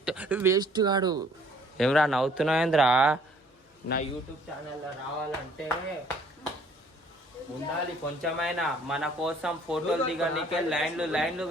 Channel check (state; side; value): normal; both; correlation 0.59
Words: వేస్ట్ కాడు. ఏమరా నవ్వుతున్నావేంద్రా? నా యూట్యూబ్ ఛానల్లో రావాలంటే ఉండాలి కొంచెమైనా. మన కోసం ఫోటోలు దిగడానికే లైన్లు